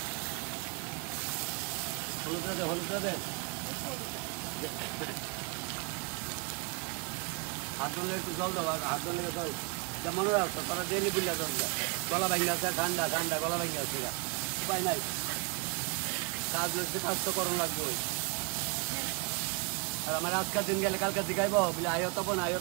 হলুদ দে হাত ধরলে একটু জল দাও, হাত ধরলে জল যেমন রাখতো তারা ডেলি বিল্লা জল গলা ভাঙি আছে, ঠান্ডা গলা ভাঙি আছে, উপায় নাই। কাজ তো করণ লাগবে। আর আমার আজকাল দিন গেলে কালকে শিখাইব বলে আয়তপন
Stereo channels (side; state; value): left; quieter; 32.1 dB